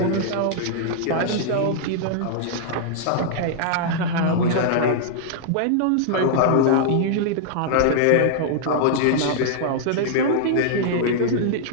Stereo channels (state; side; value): different; both; correlation -0.01